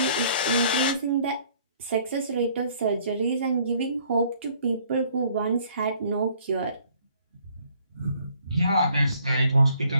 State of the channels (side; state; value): both; inverted; correlation -0.61